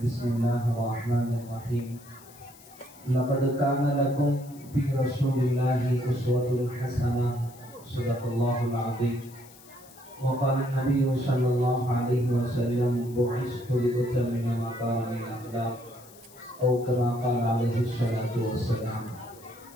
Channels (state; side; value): noise; left; hiss, 23 dB below the sound